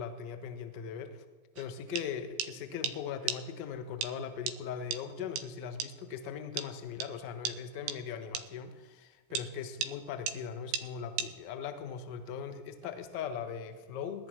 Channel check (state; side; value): late; left; 17 ms